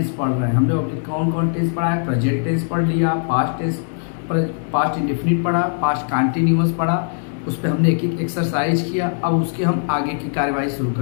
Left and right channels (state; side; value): silent; right; digital silence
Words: पढ़ रहे हैं। हम लोग अभी कौन कौन टेंस पढ़ा है? प्रेजेंट टेंस पढ़ लिया, पास्ट टेंस, पास्ट इंडेफिनिट पढ़ा, पास्ट कंटिन्यूअस पढ़ा, उस पर हमने एक एक एक्सरसाइज किया। अब उसके हम आगे की कार्यवाही शुरू